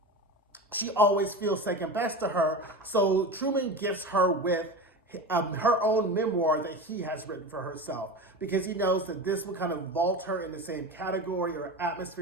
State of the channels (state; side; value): normal; both; correlation 0.27